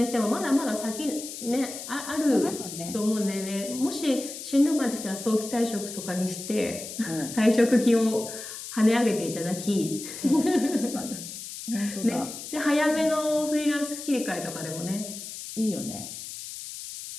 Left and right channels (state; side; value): noise; left; hiss, 10 dB below the sound